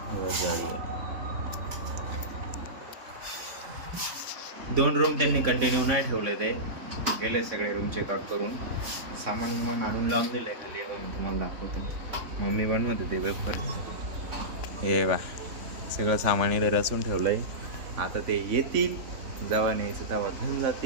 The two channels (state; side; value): late; left; 3.5 ms